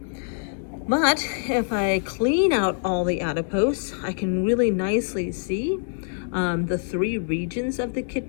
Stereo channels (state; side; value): silent; right; digital silence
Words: But if I clean out all the adipose, I can really nicely see the 3 regions of the